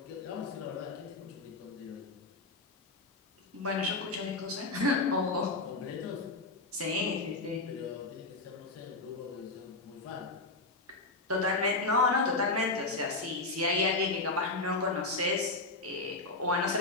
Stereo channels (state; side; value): quieter; right; 3.3 dB